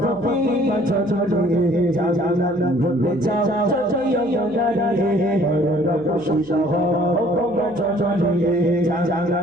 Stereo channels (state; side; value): noise; right; hum, 22 dB below the sound